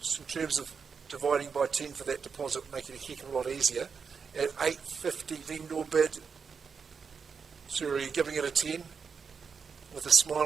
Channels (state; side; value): quieter; left; 5.9 dB